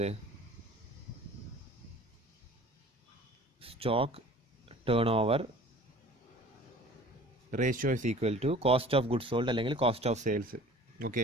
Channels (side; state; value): both; normal; correlation 0.46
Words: Stock turnover ratio is equal to cost of goods sold അല്ലെങ്കിൽ cost of sales.